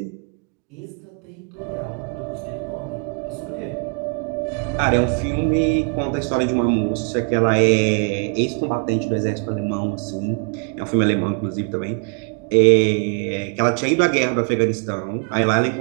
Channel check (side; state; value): left; quieter; 38.7 dB